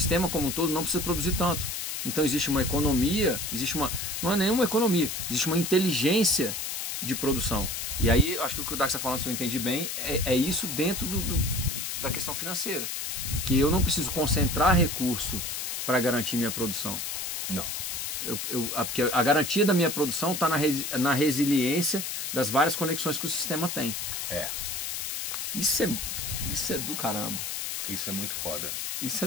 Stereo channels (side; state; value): left; noise; hiss, 3 dB below the sound